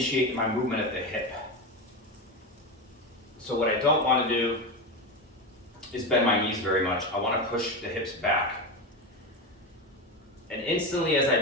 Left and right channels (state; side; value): normal; both; correlation 0.17